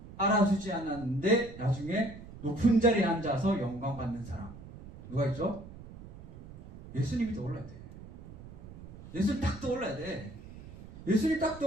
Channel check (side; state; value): right; noise; rumble, 16 dB below the sound